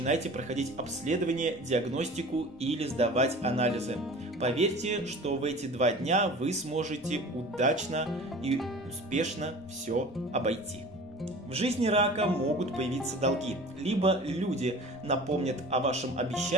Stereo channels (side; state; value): both; normal; correlation 0.41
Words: проходить обследование, диагностику или сдавать анализы. Поверьте, что в эти 2 дня вы сможете удачно и успешно все обойти. В жизни рака могут появиться долги, либо люди напомнят о вашем